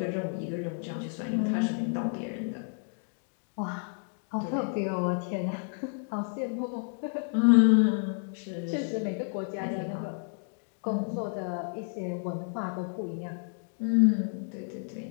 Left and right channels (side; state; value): right; silent; 57 dB below the other